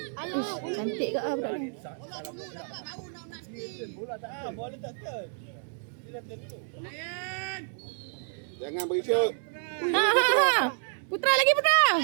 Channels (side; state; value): left; silent; 58 dB below the other